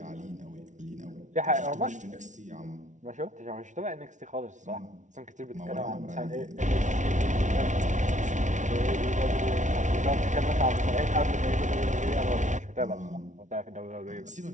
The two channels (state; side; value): late; left; 0.36 ms